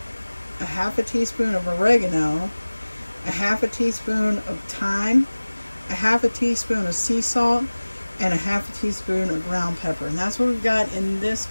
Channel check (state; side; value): inverted; both; correlation -1.00